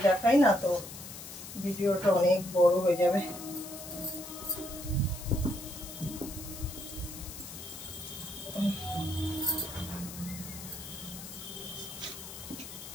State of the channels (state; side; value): noise; left; hiss, 12 dB below the sound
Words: দেখাই না তো ভিডিওটা অনেক বড় হয়ে যাবে।